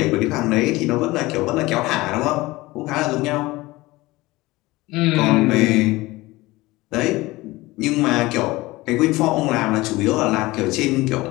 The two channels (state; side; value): quieter; right; 20.1 dB